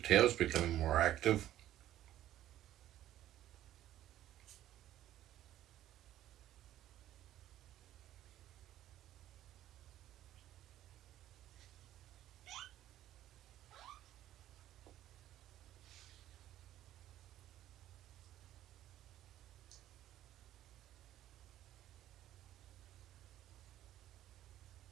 becoming more active.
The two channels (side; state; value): left; quieter; 13.1 dB